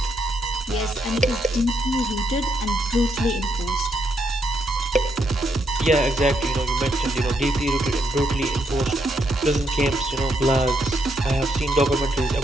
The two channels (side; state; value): both; normal; correlation 0.77